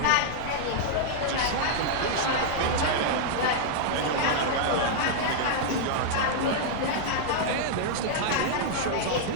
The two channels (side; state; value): both; different; correlation -0.01